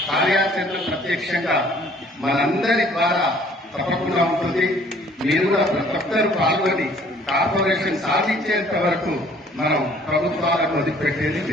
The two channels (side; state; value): both; normal; correlation 0.57